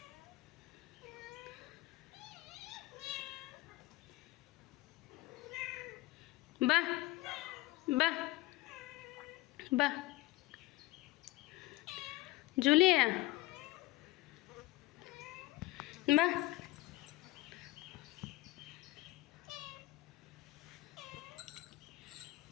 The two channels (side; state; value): right; quieter; 19.2 dB